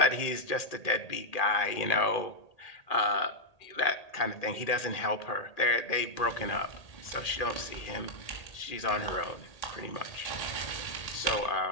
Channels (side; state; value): right; late; 1.8 ms